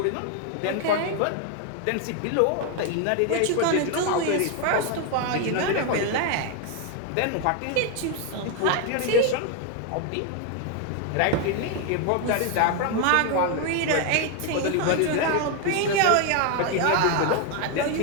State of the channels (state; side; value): different; both; correlation 0.01